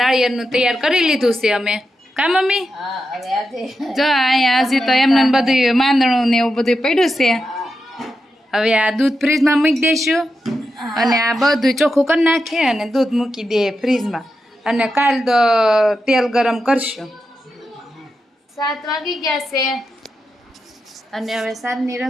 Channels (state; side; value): normal; both; correlation 0.88